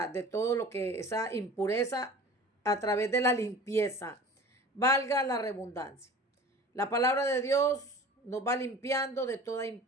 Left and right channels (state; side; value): normal; both; correlation 0.41